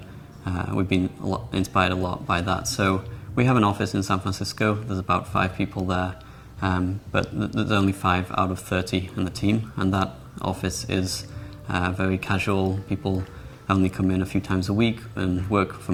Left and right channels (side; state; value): both; identical; correlation 1.00